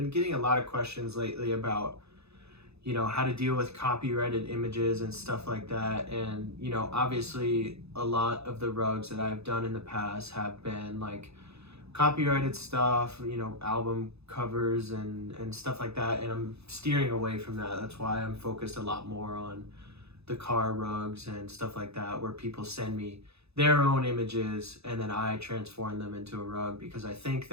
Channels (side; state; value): left; late; 0.79 ms